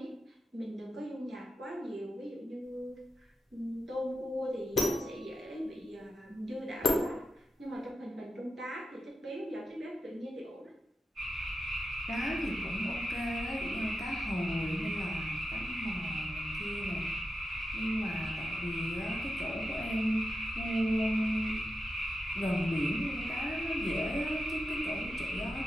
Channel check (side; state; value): both; normal; correlation 0.88